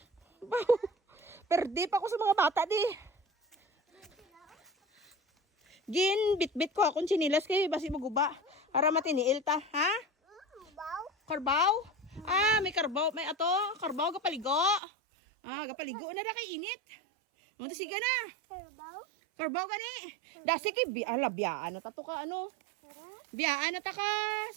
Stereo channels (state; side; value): drops out; left; at 14.8 s